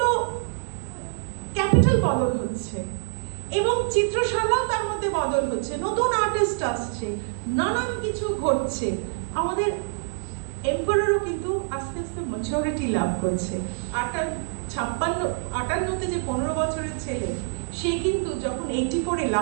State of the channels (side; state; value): left; silent; digital silence